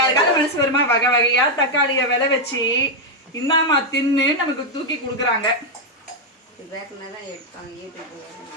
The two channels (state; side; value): normal; both; correlation 0.01